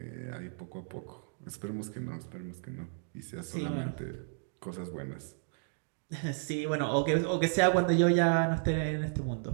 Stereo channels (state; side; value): silent; left; digital silence